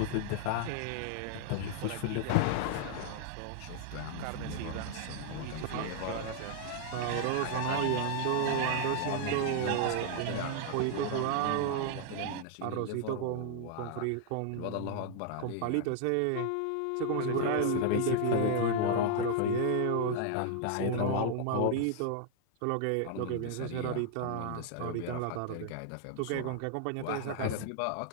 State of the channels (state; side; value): different; both; correlation 0.00